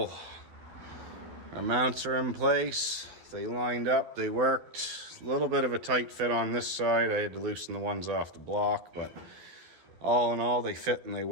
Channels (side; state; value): left; late; 12 ms